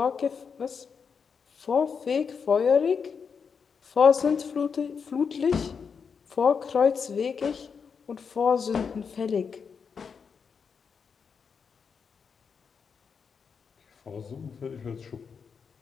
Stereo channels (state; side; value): quieter; right; 6.1 dB